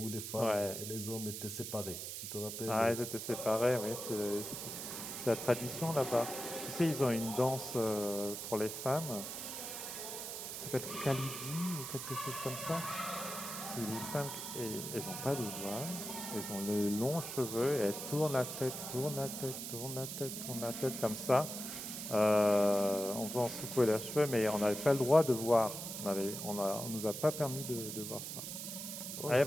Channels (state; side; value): noise; right; hiss, 6 dB below the sound